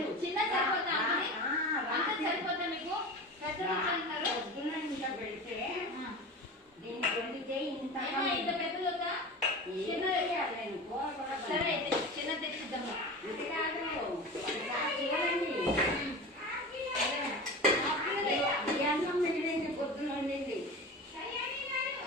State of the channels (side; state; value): both; normal; correlation 0.31